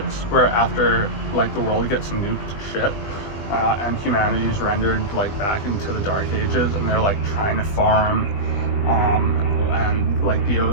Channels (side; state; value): right; late; 20 ms